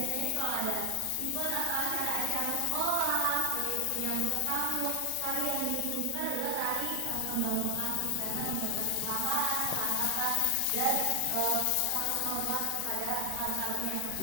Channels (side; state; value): both; different; correlation 0.00